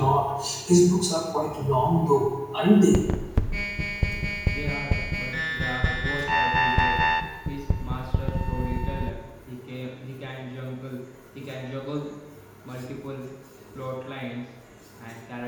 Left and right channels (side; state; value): both; identical; correlation 1.00